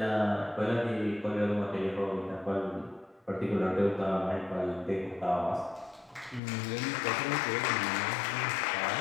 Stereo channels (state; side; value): drops out; right; at 6.4 s